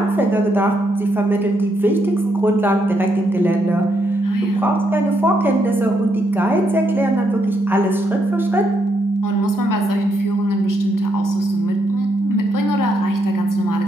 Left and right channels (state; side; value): normal; both; correlation 0.77